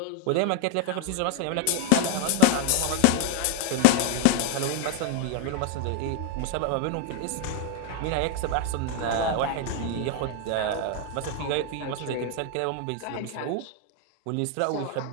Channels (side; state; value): both; different; correlation 0.01